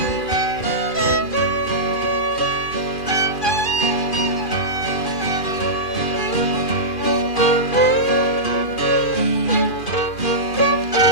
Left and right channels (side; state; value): right; late; 2.5 ms